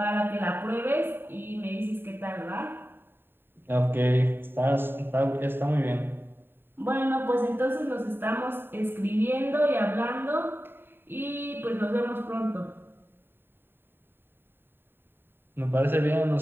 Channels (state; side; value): late; left; 0.10 ms